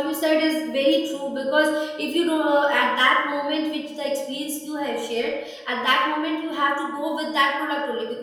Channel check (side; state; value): both; identical; correlation 1.00